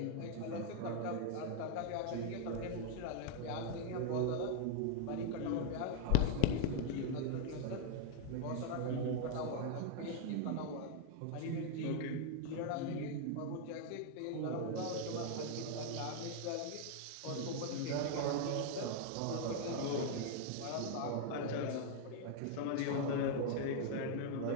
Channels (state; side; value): different; both; correlation 0.00